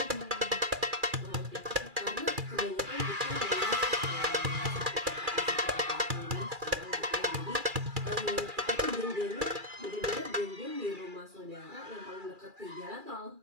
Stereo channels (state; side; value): late; left; 2.4 ms